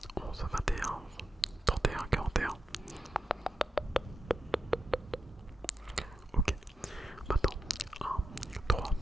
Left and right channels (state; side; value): normal; both; correlation 0.88